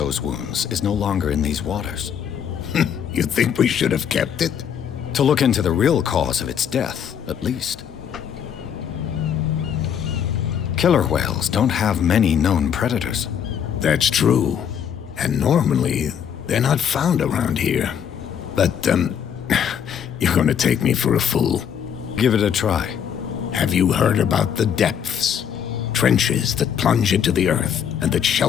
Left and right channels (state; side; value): quieter; right; 8.4 dB